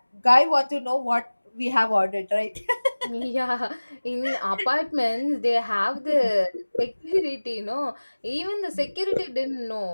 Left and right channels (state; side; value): inverted; both; correlation -1.00